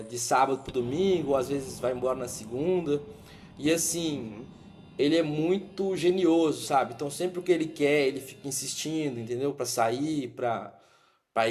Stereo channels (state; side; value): identical; both; correlation 1.00